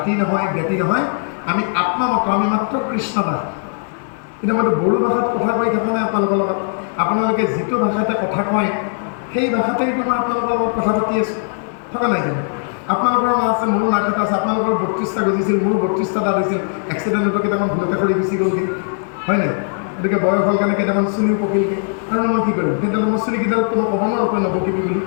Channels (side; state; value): right; silent; 60 dB below the other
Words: নহয় জ্ঞাতি নহয়, আমি আত্মা মাত্ৰ, আমি মাত্ৰ কৃষ্ণ দাস। কিন্তু মইতো বড়ো ভাষাত কথা কৈ থকা নাই আপোনালোকৰ লগত। আপোনালোকে যিটো ভাষাতে কথা কয় সেই ভাষাতেইতো মই আপোনালোকৰ লগত কথা পাতি আছোঁ, থকা নাই জানো? আপোনালোকৰ নাম আছে, মোৰো নাক এটা আছে। আপোনালোকৰ 32টা গজিছিল, মোৰো 32টা দাঁত হৈছিল। এক্সিডেণ্টতো কেইটামান ভুলতে সৰি গুচি গ'লগৈ, হয় নাই? গতিকে বয়স হ'ল কাৰণে কেইটামান চুলিও পকিলগৈ। আৰু মই কি কৰিম? সেইডাল মই চুলিকেইডালতো মই ক'ব নোৱাৰোঁ তই নপকিবি বুলি,